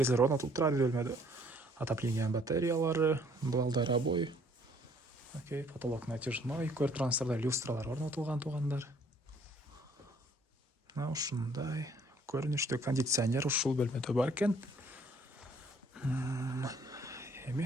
орнотулуп турат бөлмөдө. Отопление батареялары, дуалдар обой. Окей, потолок натяжной. Көрүп турганыңыздардай люстралар орнотулган туугандар. Мына ушундай көрүнүштө кондиционер ушул бөлмөдө бар экен.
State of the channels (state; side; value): normal; both; correlation 0.61